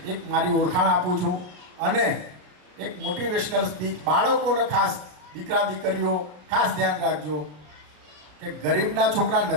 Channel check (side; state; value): left; late; 33 ms